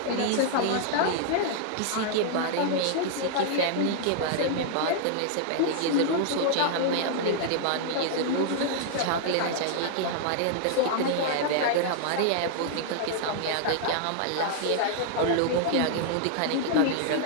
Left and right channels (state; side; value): different; both; correlation -0.01